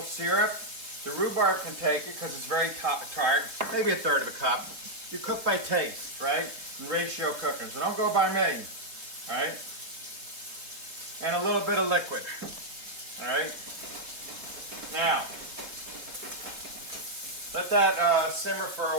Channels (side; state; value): left; late; 3.6 ms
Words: syrup. The rhubarb can take it because it's very tart. Maybe a third of a cup. You cook by taste, right? And ratio cooking. So don't go by me, all right? And a little bit of liquid. All right. Now, let that simmer for